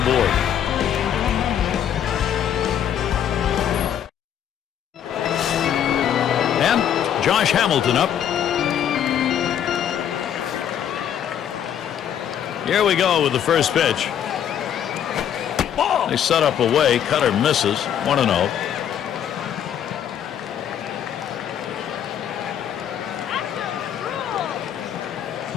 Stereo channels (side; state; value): right; quieter; 9.5 dB